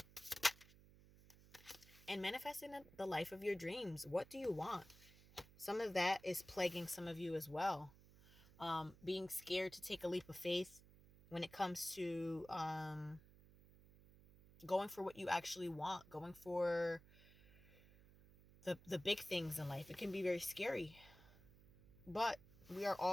And manifesting the life of your dreams. What do you want? Some of that is plaguing some of you as well. Being scared to take a leap of faith when it comes to going for what you actually want, going for the big things in life. It can be very scary. But we are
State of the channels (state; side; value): noise; right; hum, 22 dB below the sound